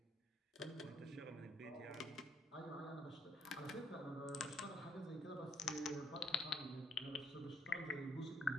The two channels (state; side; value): normal; both; correlation 0.68